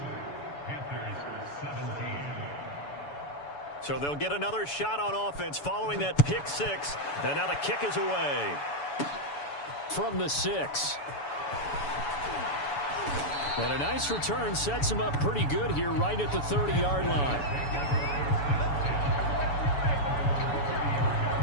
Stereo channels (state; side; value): late; right; 7.0 ms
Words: So they'll get another shot on offense following that pick six, and now the kick is away. From the 6. And a nice return sets him up pretty good here right at the 30-yard line.